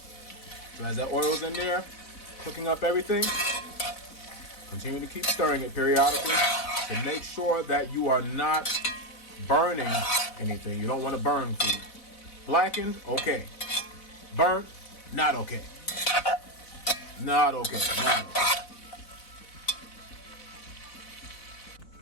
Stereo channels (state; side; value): late; right; 4.0 ms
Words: So as that oil's in there, cooking up everything, continue to keep stirring it periodically to make sure that you are not burning anything. You don't want to burn food. Blackened, okay. Burnt, not okay. Not okay. Not okay.